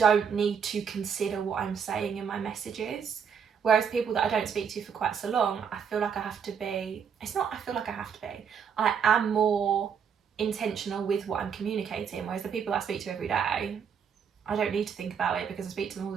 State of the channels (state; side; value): quieter; left; 7.0 dB